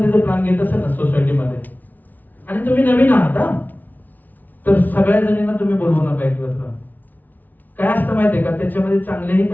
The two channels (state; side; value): late; right; 0.082 ms